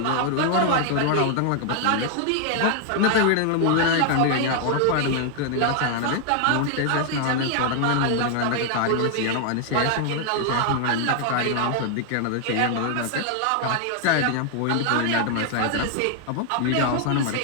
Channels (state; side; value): different; both; correlation 0.00